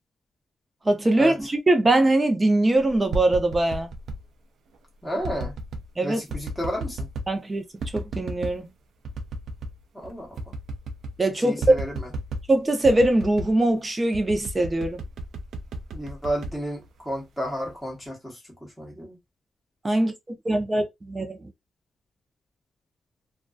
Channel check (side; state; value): both; normal; correlation 0.91